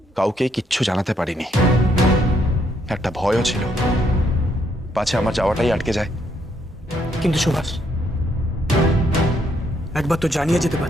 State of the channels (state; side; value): normal; both; correlation 0.73